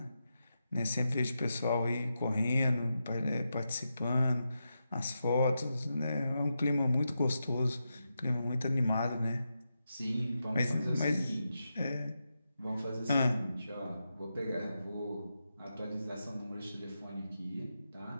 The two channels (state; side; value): inverted; both; correlation -0.87